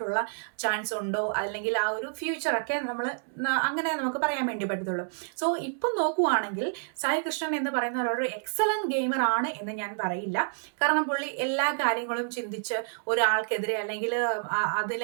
ചാൻസ് ഉണ്ടോ അല്ലെങ്കിൽ ആ ഒരു ഫ്യൂച്ചറൊക്കെ നമ്മൾ അങ്ങനെ നമുക്ക് പറയാൻ വേണ്ടി പറ്റത്തുള്ളൂ. സോ ഇപ്പം നോക്കുവാണെങ്കിൽ സായി കൃഷ്ണൻ എന്ന് പറയുന്ന ഒരു എക്സലന്റ് ഗെയിമർ ആണ് എന്ന് ഞാൻ പറയില്ല. കാരണം പുള്ളി എല്ലാ കാര്യങ്ങളും ചിന്തിച്ച് ഒരാൾക്കെതിരെ അല്ലെങ്കിൽ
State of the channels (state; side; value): silent; left; digital silence